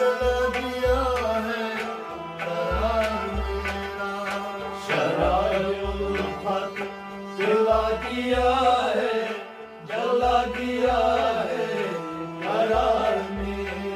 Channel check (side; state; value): both; identical; correlation 1.00